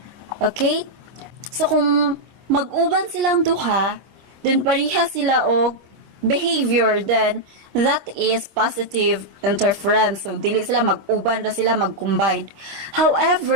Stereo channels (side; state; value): left; late; 25 ms